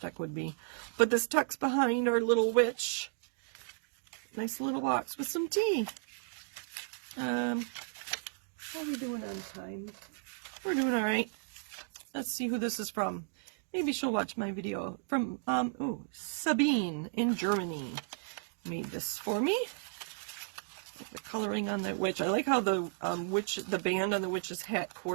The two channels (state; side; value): silent; left; digital silence